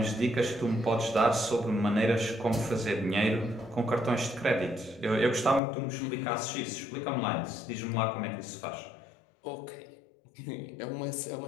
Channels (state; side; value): drops out; right; at 5.6 s